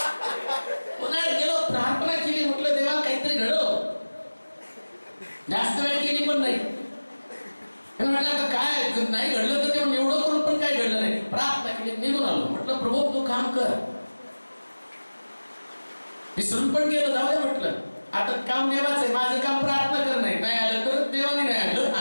उन्हाळ्यात गेलो, प्रार्थना केली, म्हटलं देवा काहीतरी घडव. जास्त वेळ केली पण नाही. म्हटलं काय नाही घडलं तर तेव्हा एवढं करून पण काय घडलं नाही. प्रार्थना केली, निघून आलो. म्हटलं प्रभू तू काम कर. विसरून पण गेलो, जाऊ दे म्हटलं. आता काम देवाचं आहे, माझं काम प्रार्थना करणं नाही. नाही आलं तर देवाने नाही आणलं,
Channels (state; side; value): inverted; both; correlation -1.00